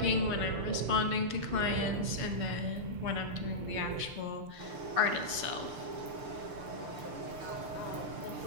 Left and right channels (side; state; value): left; late; 6.8 ms